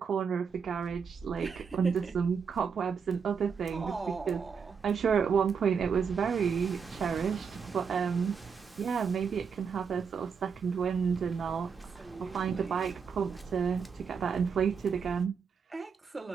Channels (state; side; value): quieter; left; 6.2 dB